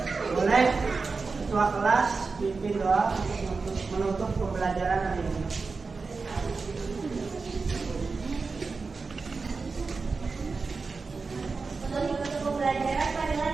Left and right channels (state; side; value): quieter; left; 4.4 dB